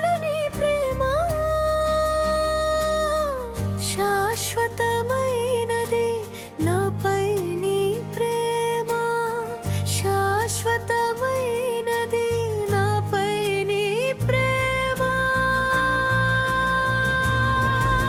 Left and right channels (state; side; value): identical; both; correlation 1.00